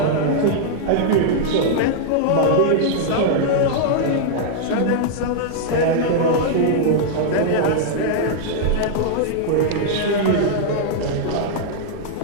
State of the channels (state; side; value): different; both; correlation -0.01